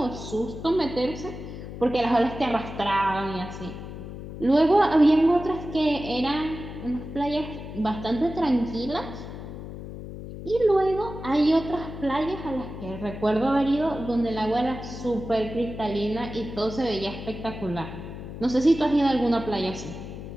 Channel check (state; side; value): noise; left; hum, 10 dB below the sound